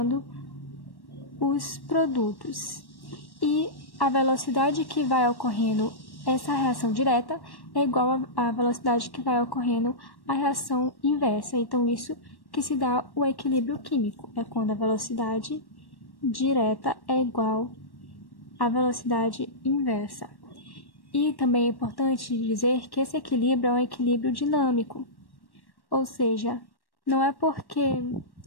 os produtos. E a velocidade que vai ocorrendo essa reação direta é igual à velocidade que vai ocorrendo a reação inversa. Então, isso que se dá o equilíbrio químico. É quando a velocidade direta é igual à velocidade inversa. E também é importante dizer que esse equilíbrio é um equilíbrio dinâmico. Ou seja, não é porque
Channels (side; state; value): right; late; 1.1 ms